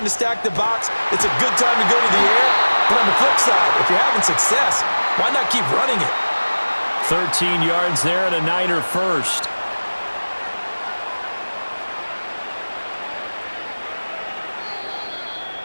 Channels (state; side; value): inverted; both; correlation -1.00